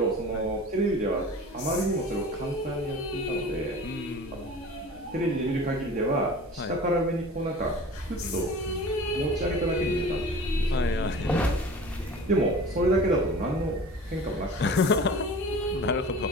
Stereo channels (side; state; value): both; normal; correlation 0.40